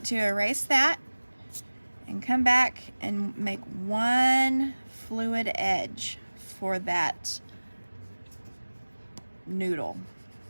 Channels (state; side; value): inverted; both; correlation -1.00